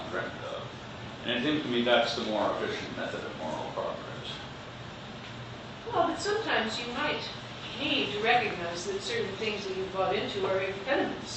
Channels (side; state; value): both; identical; correlation 1.00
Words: of. And it seems to me that's the more efficient method of moral progress. Well, but sometimes you might need to recognize that certain things that you've bought into are